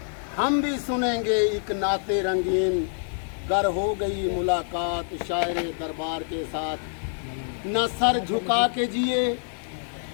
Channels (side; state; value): right; silent; 61 dB below the other